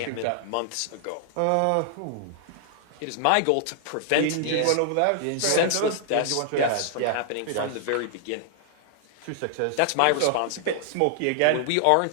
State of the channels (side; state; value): both; different; correlation -0.01